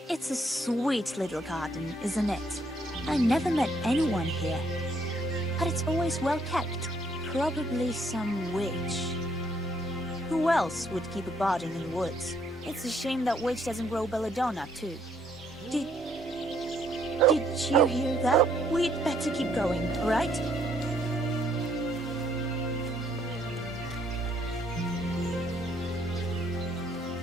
It's a sweet little garden, isn't it? I never met anyone here, but it's always well kept. Probably some witch. Who else would keep a garden in the woods? It's a shame that witch doesn't grow belladonna, too. Did you hear that? We'd better keep going, all right?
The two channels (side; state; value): both; normal; correlation 0.68